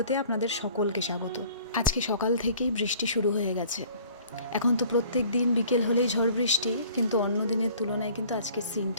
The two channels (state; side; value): inverted; both; correlation -0.52